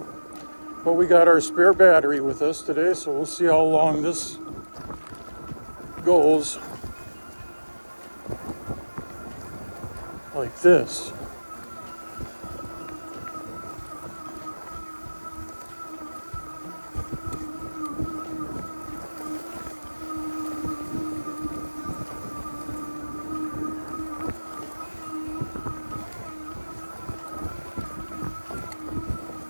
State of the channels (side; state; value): both; inverted; correlation -1.00